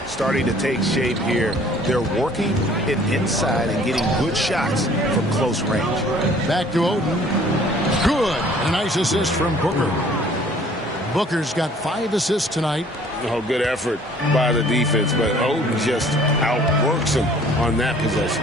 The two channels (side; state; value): both; normal; correlation 0.54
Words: starting to take shape here. They're working it inside and getting good shots from close range. Back to Oden. Good. A nice assist from Booker. Booker's got 5 assists tonight. Oh, good effort by the defense, but Oden just outworks him on that possession.